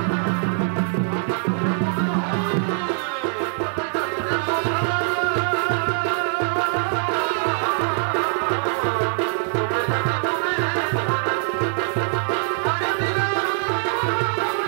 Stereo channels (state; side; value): silent; left; digital silence